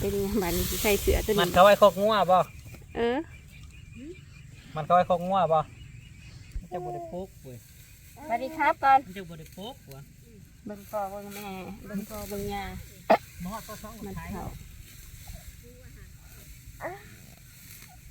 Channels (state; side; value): identical; both; correlation 1.00